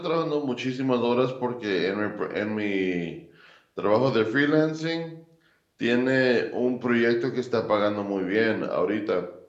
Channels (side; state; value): both; identical; correlation 1.00